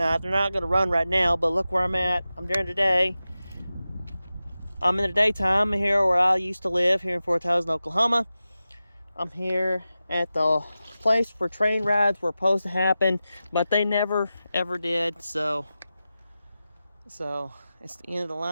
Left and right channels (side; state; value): both; inverted; correlation -0.94